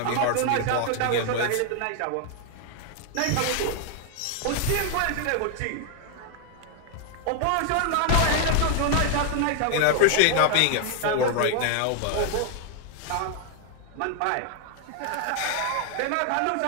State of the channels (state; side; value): different; both; correlation 0.00